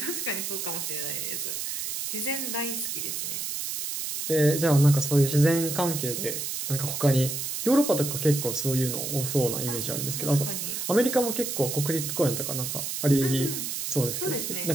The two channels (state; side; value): noise; right; hiss, 4 dB below the sound